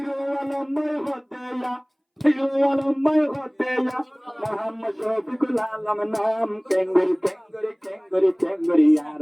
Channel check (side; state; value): both; identical; correlation 1.00